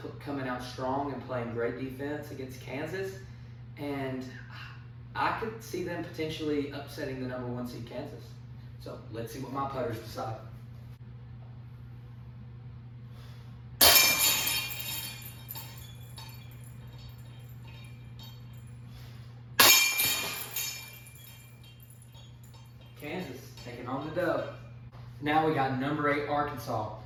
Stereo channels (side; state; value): both; identical; correlation 1.00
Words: coming out strong and playing great defense against Kansas, and I could see them potentially upsetting the number 1 seed Kansas. So let's see what my putters decide. Kansas taking on the dub. Now we got number 8 Arkansas